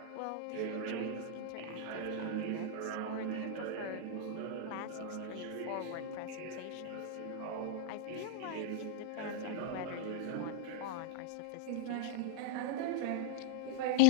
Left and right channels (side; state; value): both; different; correlation 0.00